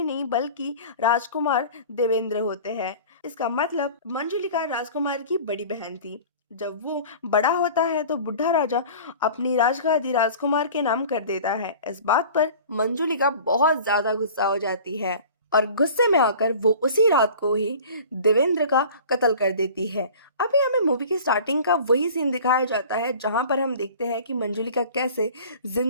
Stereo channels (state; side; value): inverted; both; correlation -0.42